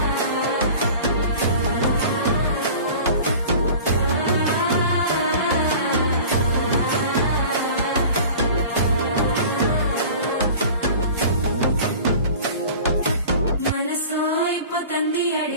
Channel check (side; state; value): both; inverted; correlation -0.42